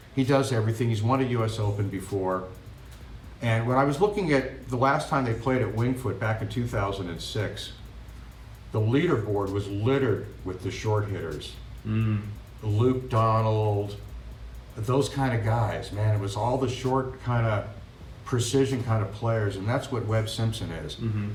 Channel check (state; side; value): identical; both; correlation 1.00